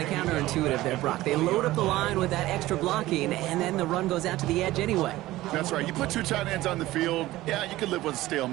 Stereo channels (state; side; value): quieter; left; 16.8 dB